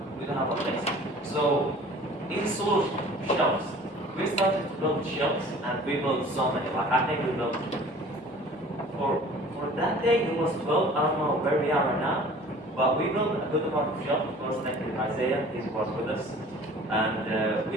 we don't have a place. So in solution, shelves. We started to build shelves, and we built so many. Like I think we built for that day it was 12. I don't know where we are right now, but we built a good amount of shelves. Of course, thank you Isaiah, he was with us, and we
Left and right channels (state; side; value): normal; both; correlation 0.47